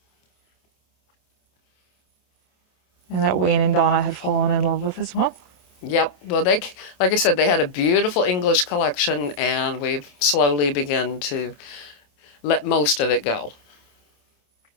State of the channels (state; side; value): late; right; 27 ms